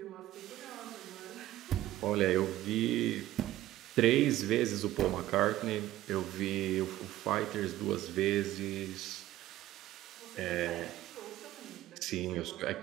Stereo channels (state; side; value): quieter; left; 14.8 dB